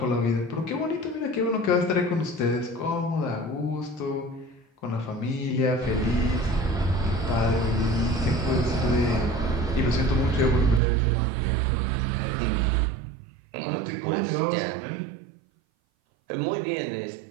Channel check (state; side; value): drops out; left; at 10.8 s